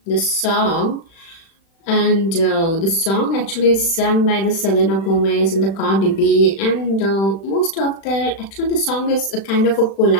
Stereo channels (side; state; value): right; late; 36 ms